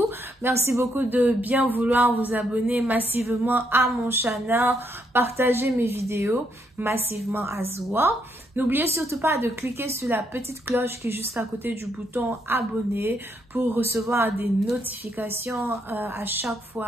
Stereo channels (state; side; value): normal; both; correlation 0.75